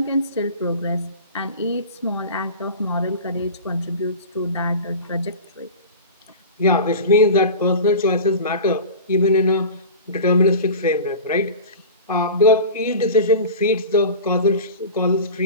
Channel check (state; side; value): inverted; both; correlation -0.34